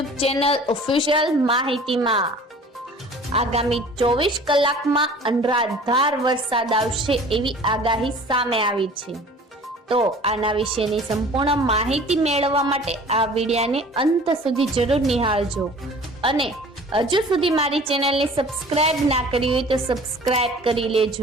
ચેનલ ઓફિશિયલ માહિતીમાં। આગામી 24 કલાકમાં અનરાધાર વરસાદ આવશે એવી આગાહી સામે આવી છે। તો આના વિશેની સંપૂર્ણ માહિતી મેળવવા માટે આ વિડિયોને અંત સુધી જરૂર નિહાળજો અને હજુ સુધી મારી ચેનલને સબસ્ક્રાઇબ ના કરી હોય તો સબસ્ક્રાઇબ કરી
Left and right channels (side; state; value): both; normal; correlation 0.46